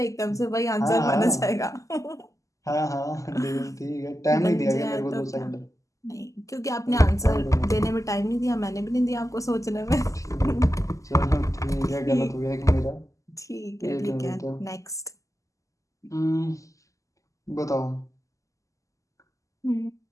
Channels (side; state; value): right; late; 0.16 ms